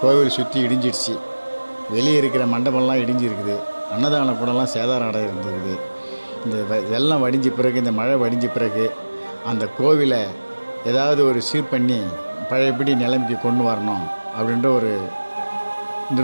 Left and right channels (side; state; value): both; inverted; correlation -1.00